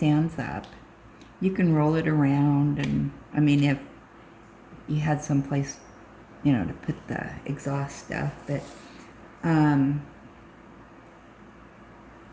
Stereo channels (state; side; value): identical; both; correlation 1.00